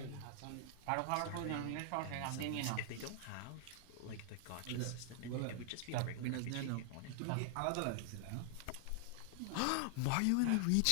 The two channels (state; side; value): different; both; correlation 0.00